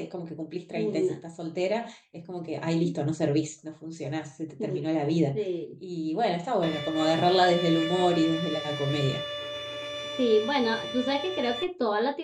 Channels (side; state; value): both; identical; correlation 1.00